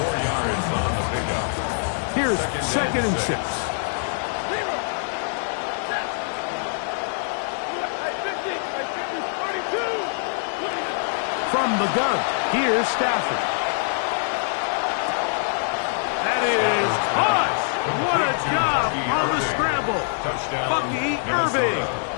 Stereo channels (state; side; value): silent; right; digital silence